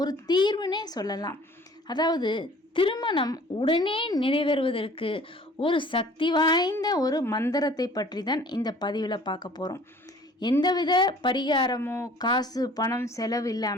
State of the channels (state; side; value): normal; both; correlation 0.51